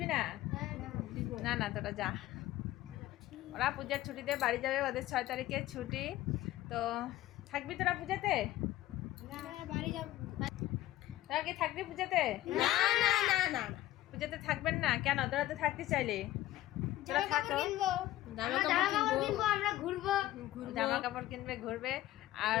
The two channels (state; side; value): quieter; right; 15.2 dB